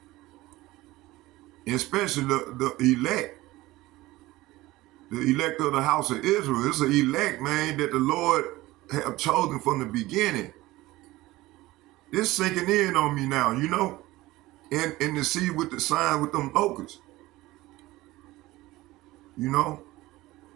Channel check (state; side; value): quieter; left; 18.4 dB